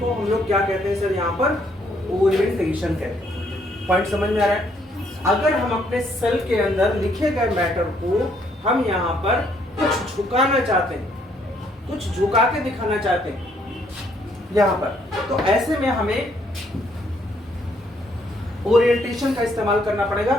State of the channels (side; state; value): both; normal; correlation 0.69